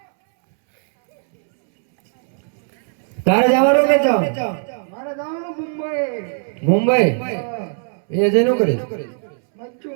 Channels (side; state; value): left; silent; 66 dB below the other